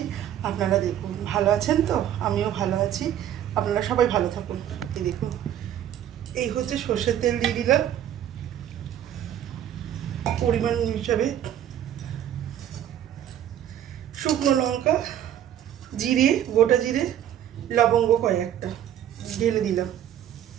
আপনারা দেখুন, ভালো আছেন তো? আমিও ভালো আছি, আপনারা সবাই ভালো থাকুন। এই দেখুন, এই হচ্ছে সর্ষের তেল দিয়ে দিলাম পরিমাণ হিসাবে, শুকনো লঙ্কা, জিরে, গোটা জিরে, লবঙ্গ কয়েকটা ঢেলে দিলাম।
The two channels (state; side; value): quieter; left; 10.8 dB